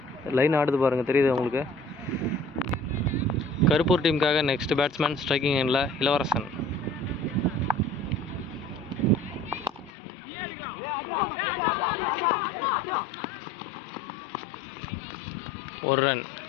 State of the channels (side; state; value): right; drops out; at 9.9 s